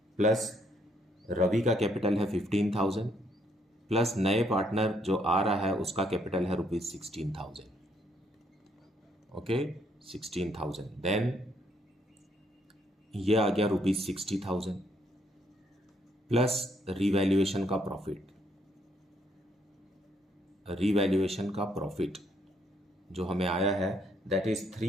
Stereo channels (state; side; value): normal; both; correlation 0.71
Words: प्लस रवि का कैपिटल है 15,000 प्लस नए पार्टनर जो आ रहा है उसका कैपिटल है ₹16,000. ओके, 16,000. देन ये आ गया ₹60,000 प्लस रिवैल्यूएशन का प्रॉफिट जो हमें आया है दैट इज